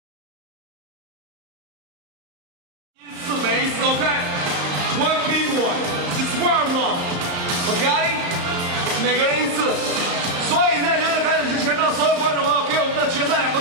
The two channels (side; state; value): left; late; 34 ms